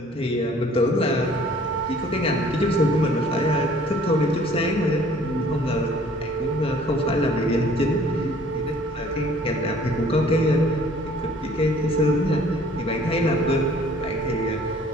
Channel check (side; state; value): both; normal; correlation 0.55